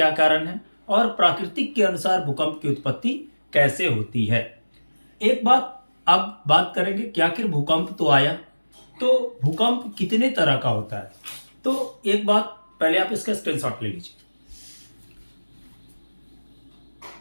कारण है और प्राकृतिक के अनुसार भूकंप की उत्पत्ति कैसे होती है। एक बात अब बात करेंगे कि आखिर भूकंप तो आया, तो भूकंप कितने तरह का होता है। तो एक बात पहले आप इसका स्क्रीनशॉट ले लीजिए।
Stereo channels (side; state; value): both; inverted; correlation -1.00